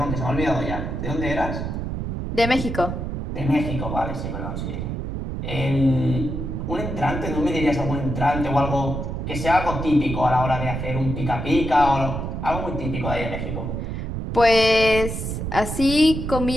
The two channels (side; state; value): right; noise; rumble, 4 dB below the sound